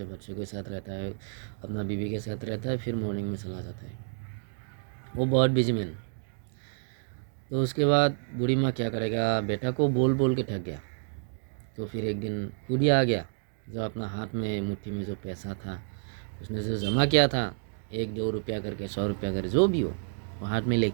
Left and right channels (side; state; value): left; silent; digital silence